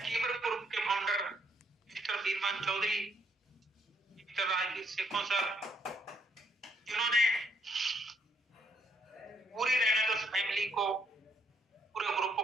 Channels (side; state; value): both; normal; correlation 0.69